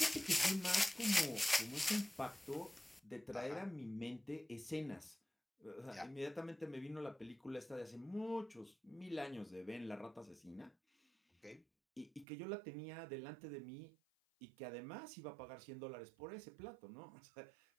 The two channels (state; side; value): drops out; left; at 12.2 s